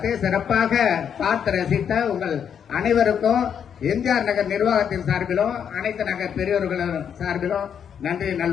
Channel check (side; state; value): right; quieter; 8.0 dB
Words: சிறப்பாக பார்த்து ரசித்த உங்கள் அனைவருக்கும் எம்ஜிஆர் நகர் நிர்வாகத்தின் சார்பிலும் அனைத்து நகர் பெரியவர்களின் சார்பிலும் நன்றி